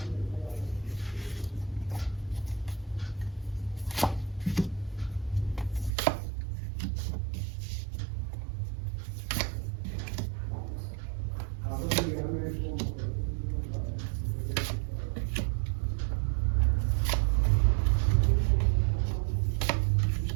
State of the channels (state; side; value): drops out; left; at 5.9 s